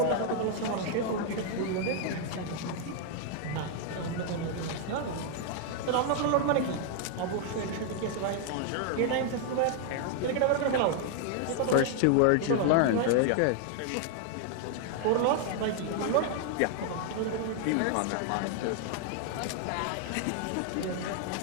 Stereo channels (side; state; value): both; different; correlation 0.00